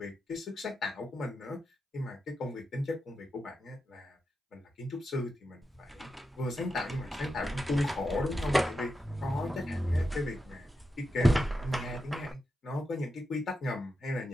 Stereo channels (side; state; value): both; normal; correlation 0.88